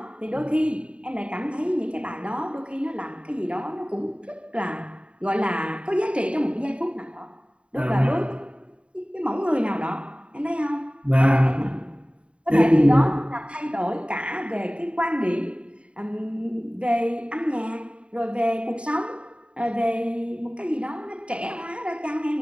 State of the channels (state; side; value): late; left; 0.059 ms